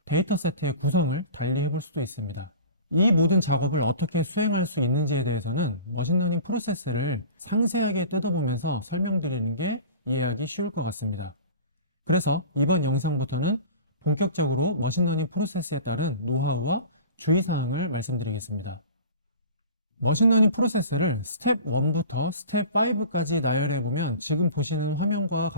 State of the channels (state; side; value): inverted; both; correlation -0.39